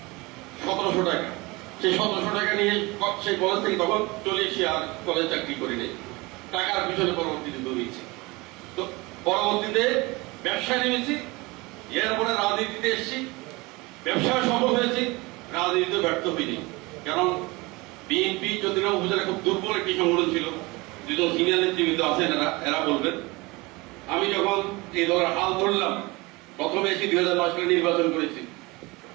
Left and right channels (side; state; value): left; quieter; 23.8 dB